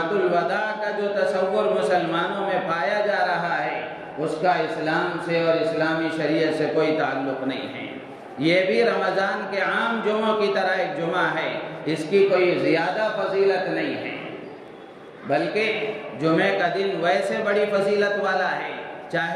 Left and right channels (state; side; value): identical; both; correlation 1.00